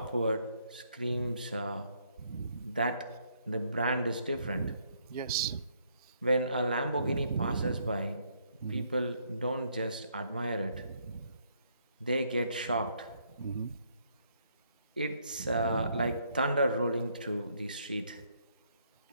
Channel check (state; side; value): inverted; both; correlation -0.70